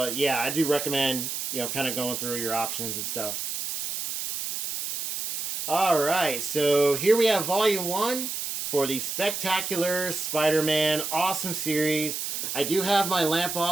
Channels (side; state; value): right; noise; hiss, 4 dB below the sound